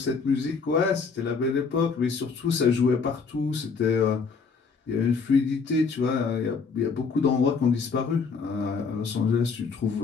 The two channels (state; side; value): quieter; right; 5.1 dB